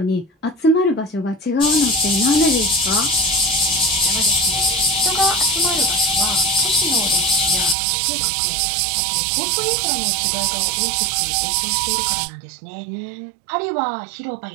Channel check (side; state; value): left; drops out; at 7.8 s